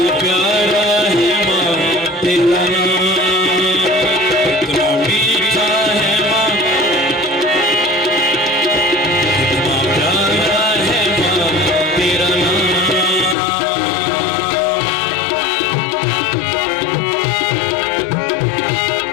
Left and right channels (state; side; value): drops out; right; at 13.4 s